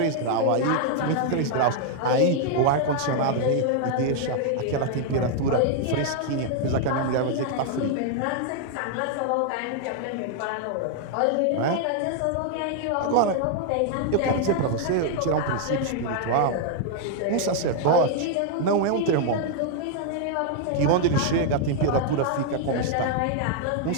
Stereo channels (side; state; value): both; different; correlation 0.00